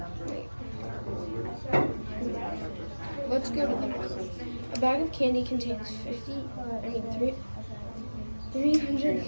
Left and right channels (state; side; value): inverted; both; correlation -1.00